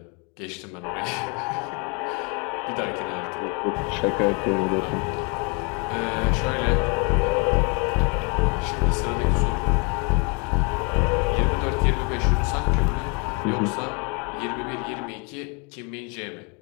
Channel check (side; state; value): right; quieter; 32.0 dB